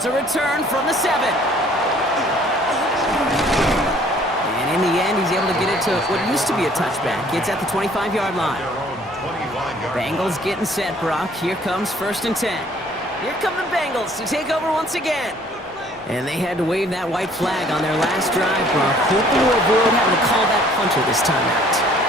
a return from the 7. And in the end, he's able to get it to what used to be a touchback. It's at the 25-yard line. Bengals getting set, Brock. Here comes 1st and 10. Here come the Bengals to take over once again. And they had to wave that white flag on their last drive, Brock. Hoping to avoid having to call that punter this time out.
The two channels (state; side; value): normal; both; correlation 0.57